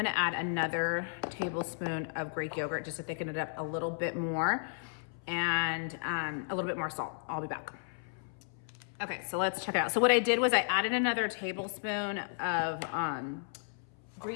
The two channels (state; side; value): silent; right; 55 dB below the other